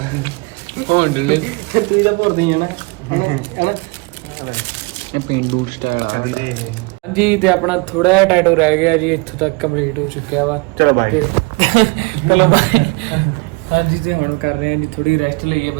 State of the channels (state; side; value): quieter; left; 27.3 dB